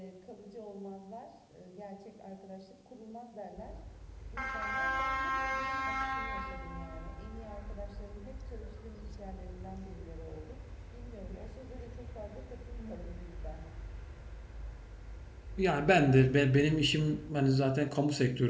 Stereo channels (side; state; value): both; identical; correlation 1.00